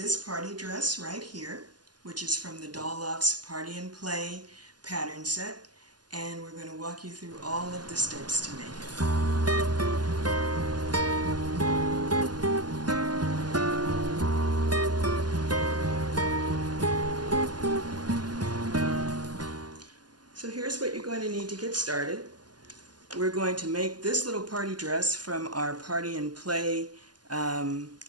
party dress right here, which is from the Doll Loft's Party and Play pattern set, and we're going to walk you through all of the steps to make it. So here's what you're going to need to get started. We're going to make this little party dress from our Party and Play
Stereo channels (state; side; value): late; left; 0.70 ms